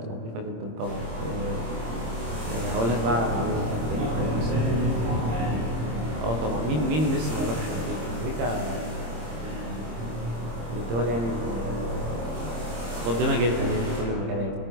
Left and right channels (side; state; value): left; late; 26 ms